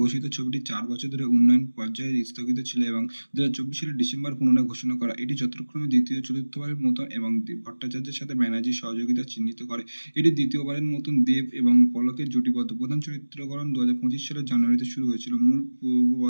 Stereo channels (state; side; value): inverted; both; correlation -1.00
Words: ঘোষিত ছবিটি 4 বছর ধরে উন্নয়ন পর্যায়ে স্থগিত ছিল এবং 2024 সালের ডিসেম্বর পুনরায় ঘোষণা করা। এটি যথাক্রমে দ্বিতীয় চতুর্থবারের মতন এবং ভট্টাচার্যের সাথে ব্যানার্জির সহযোগিতা চিহ্নিত করে। এটি দ্বিতীয়বারের মতন দেব এবং পলকের জুটিবদ্ধ। প্রধান চরিত্রকরণ 2025 সালের জানুয়ারিতে শুরু হয়েছিল মূল পূর্ব